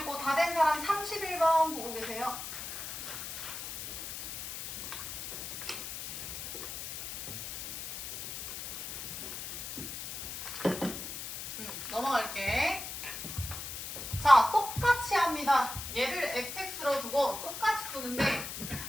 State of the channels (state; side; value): noise; left; hiss, 7 dB below the sound